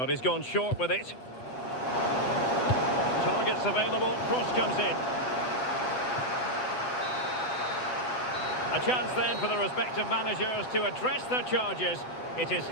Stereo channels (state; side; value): late; right; 7.8 ms